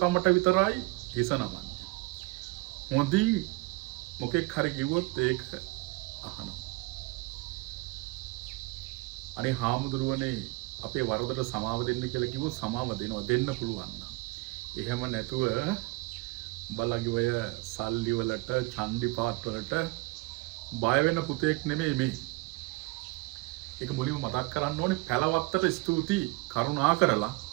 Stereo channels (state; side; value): quieter; left; 23.7 dB